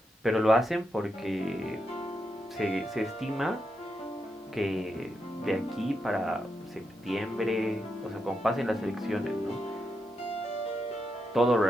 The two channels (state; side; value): normal; both; correlation 0.84